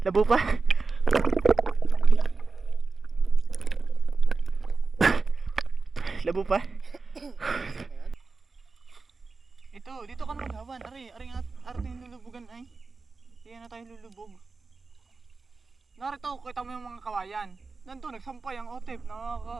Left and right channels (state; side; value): quieter; left; 4.2 dB